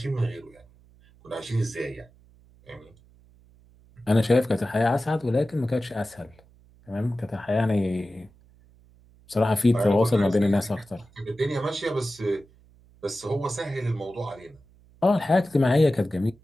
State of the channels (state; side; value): noise; right; hum, 28 dB below the sound